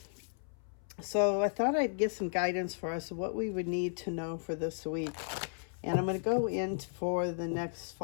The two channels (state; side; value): silent; right; 55 dB below the other